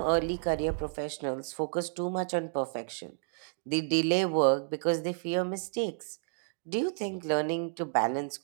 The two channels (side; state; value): left; silent; digital silence